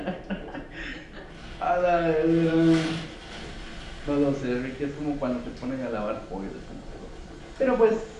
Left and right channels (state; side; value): identical; both; correlation 1.00